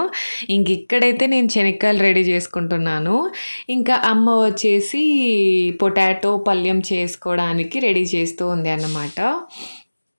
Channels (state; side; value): inverted; both; correlation -1.00